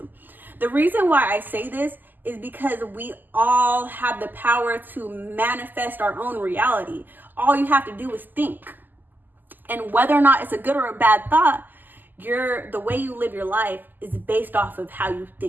The reason why I say this is because we all have the power to manifest our own reality. All you have to do is think. And whether or not it's a good or a bad thought, the way you live your life is based off of how you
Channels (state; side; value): late; left; 0.087 ms